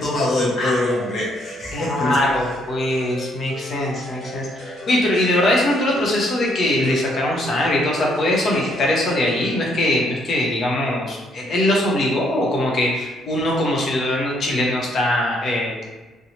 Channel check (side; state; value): both; normal; correlation 0.70